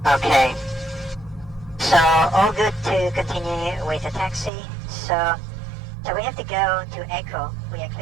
Okay. So all good to continue with the taxi. So we have to go to Echo. We are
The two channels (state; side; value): drops out; left; at 4.5 s